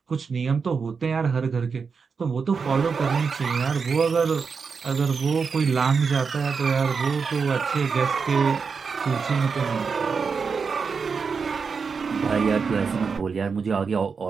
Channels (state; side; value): quieter; left; 5.4 dB